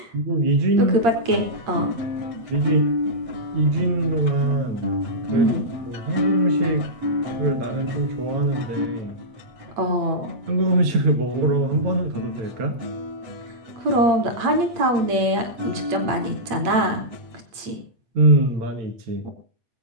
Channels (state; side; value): late; left; 8.7 ms